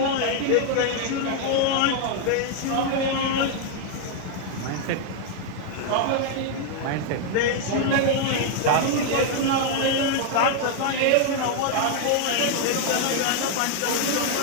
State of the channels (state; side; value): different; both; correlation 0.00